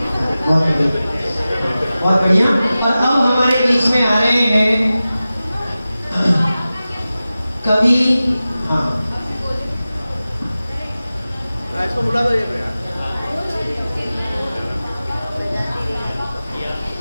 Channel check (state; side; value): inverted; both; correlation -0.95